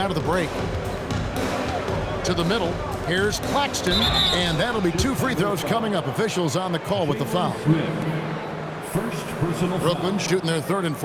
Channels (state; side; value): identical; both; correlation 1.00